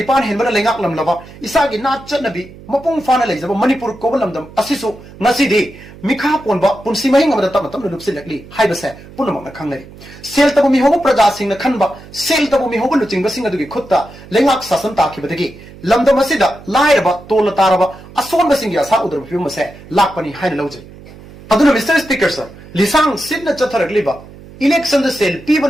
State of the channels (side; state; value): right; noise; hum, 19 dB below the sound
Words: henbana lengak lamlaba isagi nachanabi mapung fana leijaba manipur kobalamdam asisu ngasidi mikha ponba punsi mahing amada tamatam lupsilakli haibase punamakna khangnari sel tabu mi hobo praja singna khanba sel tabu mi hobo luchingba singa dugi khutta lengak sasan takhibadagi lamdam asida lairaba tola taraba asonba singi asa udrab phimase lakpani haina lawje aduna Mr. Speaker, sir lisang sidna chatharakliba election the sel